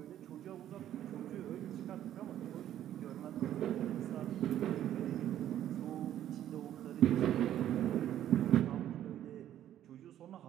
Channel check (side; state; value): left; quieter; 11.6 dB